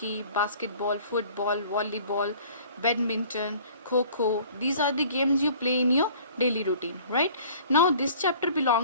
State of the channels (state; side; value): inverted; both; correlation -0.50